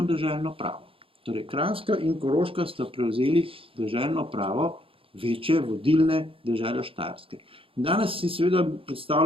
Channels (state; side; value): late; left; 0.27 ms